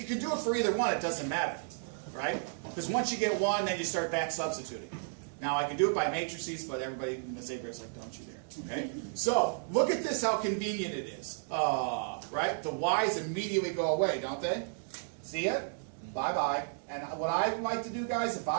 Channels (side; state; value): left; silent; digital silence